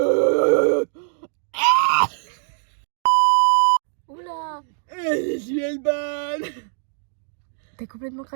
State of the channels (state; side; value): silent; left; digital silence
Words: Oula. Je suis Elban. T'es complètement